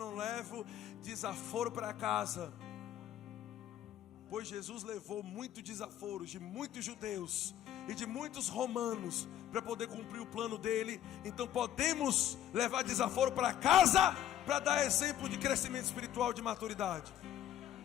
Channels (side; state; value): right; quieter; 11.5 dB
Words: levo desaforo para casa. pois Jesus levou muitos desaforos de muitos judeus e de muitos romanos para poder cumprir o plano dele. Então podemos levar desaforo para casa para dar exemplo de crescimento espiritual, de maturidade.